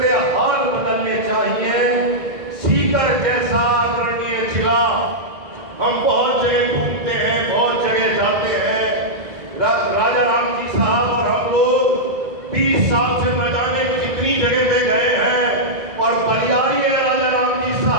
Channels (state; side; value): late; left; 1.6 ms